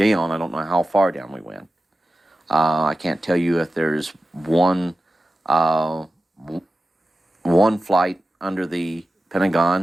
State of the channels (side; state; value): both; normal; correlation 0.93